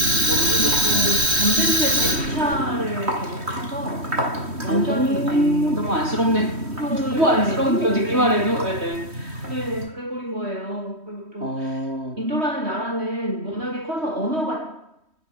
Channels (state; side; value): late; left; 3.1 ms